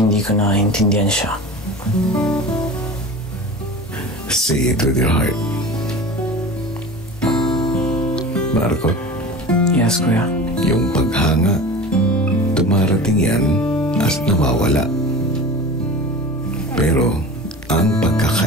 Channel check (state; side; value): normal; both; correlation 0.34